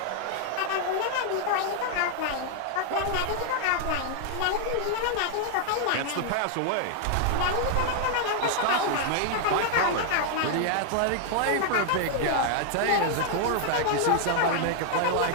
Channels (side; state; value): both; different; correlation 0.00